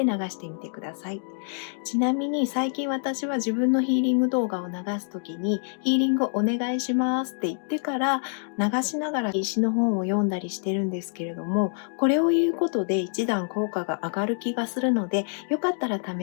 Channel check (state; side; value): silent; right; 61 dB below the other